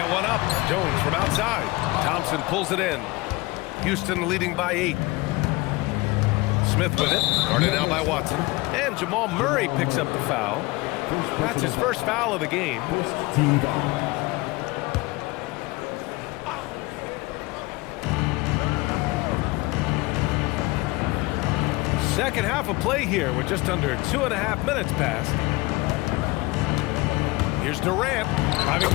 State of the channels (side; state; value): right; quieter; 22.3 dB